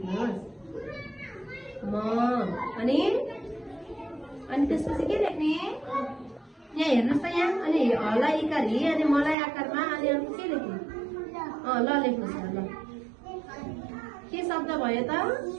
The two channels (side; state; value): left; drops out; at 9.3 s